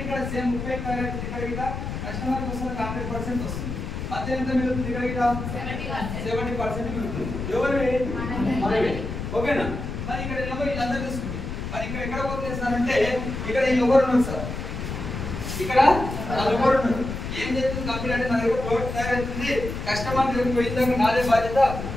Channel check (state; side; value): noise; left; rumble, 6 dB below the sound